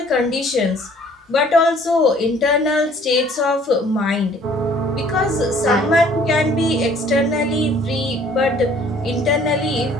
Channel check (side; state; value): both; normal; correlation 0.56